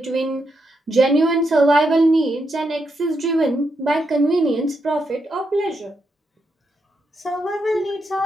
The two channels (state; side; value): normal; both; correlation 0.82